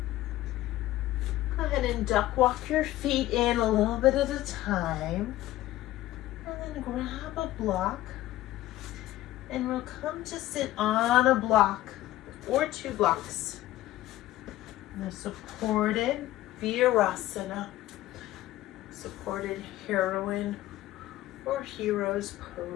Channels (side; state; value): right; quieter; 15.5 dB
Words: Go ahead and duck walk your feet in a little bit at a time. And then grab a block. And we'll come to sit on a block or 2 blocks. In a supported Virasana, supported heroine or hero's